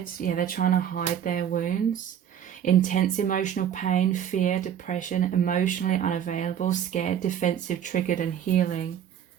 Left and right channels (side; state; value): left; quieter; 9.4 dB